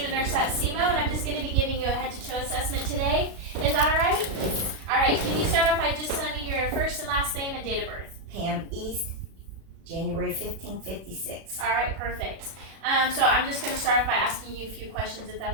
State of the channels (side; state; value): left; late; 36 ms